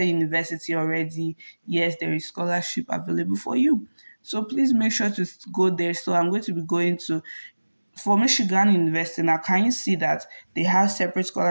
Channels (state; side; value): inverted; both; correlation -1.00